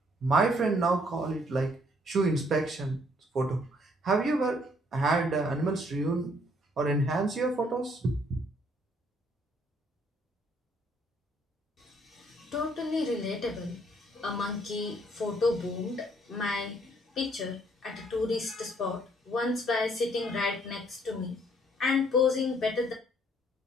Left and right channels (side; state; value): both; normal; correlation 0.65